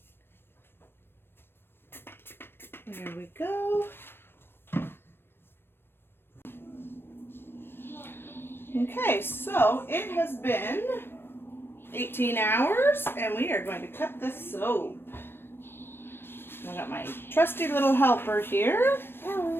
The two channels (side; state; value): right; late; 0.10 ms